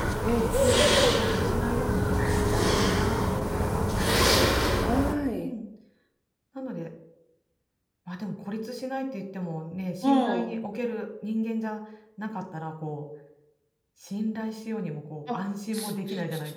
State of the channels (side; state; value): both; identical; correlation 1.00